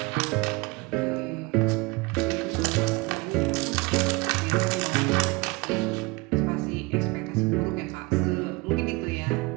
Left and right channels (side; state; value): left; quieter; 25.3 dB